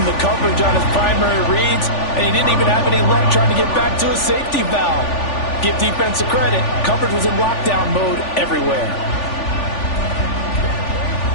the coverage on his primary reads, and he didn't even have any luck trying to get back to his safety valve. Give defense a credit. Coverage was in lockdown mode everywhere.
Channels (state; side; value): late; right; 3.4 ms